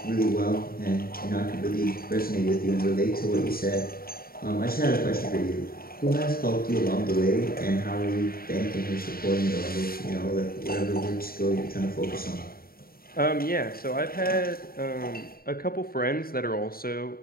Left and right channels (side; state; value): right; late; 0.43 ms